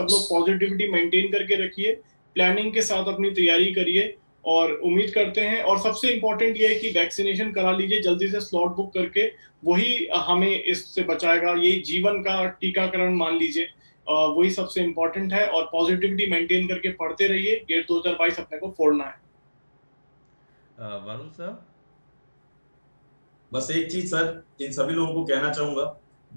लोग पॉजिटिविटी मेंटेन करके रखिए, प्लानिंग के साथ अपनी तैयारी करिए, और उम्मीद करते हैं, और सबसे इम्पोर्टेंट ये है कि वैक्सीनेशन करा लीजिए जल्दी से, स्लॉट बुक करके, वही हमें इससे बचाएगा। ये जीवन का टीकाकरण मान लीजिए, वही सबसे इम्पोर्टेंट है। और पॉजिटिविटी मेंटेन करके पढ़ते रहिए, गेट 2022 अपने को फोड़ना है। वरुण सर? बस एक चीज सर इन सभी लोगों को कहना चाहूंगा,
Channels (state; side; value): inverted; both; correlation -1.00